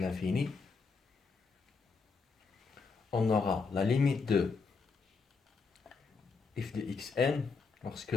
on aura la limite de f de xn, lorsque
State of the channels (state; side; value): quieter; right; 4.7 dB